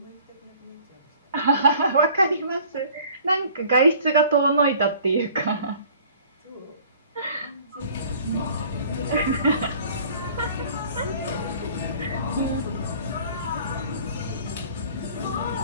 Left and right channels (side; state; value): both; inverted; correlation -0.51